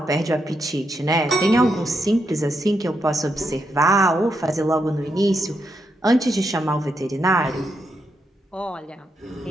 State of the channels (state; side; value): normal; both; correlation 0.82